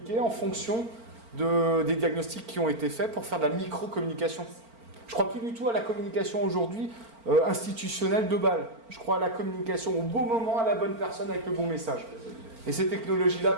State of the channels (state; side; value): late; left; 4.4 ms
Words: en fonction des diagnostics qui ont été faits pour faire de la micro-communication. Je ne crois plus du tout à la communication aujourd'hui institutionnelle de balle. Je crois à la communication au bon moment, à la bonne personne, avec le bon message. Et ces technologies-là